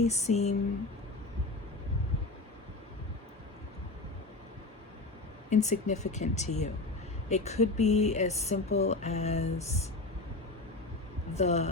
seem insignificant to you. It could be as simple as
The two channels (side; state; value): right; quieter; 3.1 dB